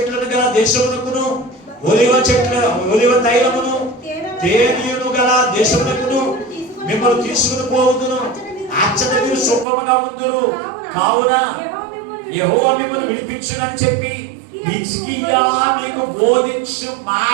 గల దేశమునకును, ఒలివ తైలమును తేనెను గల దేశమునకును మిమ్మల్ని తీసుకుని పోవుదును. అచ్చట మీరు సుఖముగా ఉందురు. కావున యెహోవా మిమ్మల్ని విడిపించునని చెప్పి హిజ్కియా మీకు బోధించు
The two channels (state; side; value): drops out; left; at 9.7 s